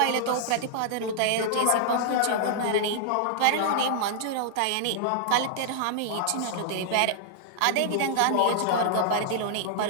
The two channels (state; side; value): different; both; correlation -0.01